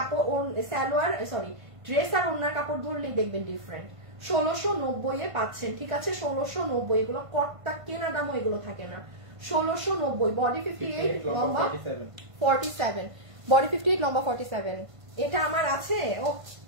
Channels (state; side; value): late; left; 1.5 ms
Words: সালোয়ার সরি ড্রেস আর ওনার কাপড় ধরলেই দেখবেন ডিফারেন্ট। 1690 এ পাচ্ছেন, ঠিক আছে? 1690, এগুলো কটটা কেনা দামও এগুলো থাকে না। 1690, বডি 58 লম্বা 47, বডি 58 লম্বা 47। এটা আমার আছে ও